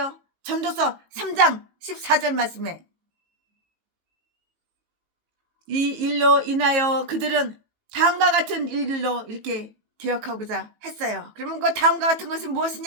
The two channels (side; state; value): left; late; 18 ms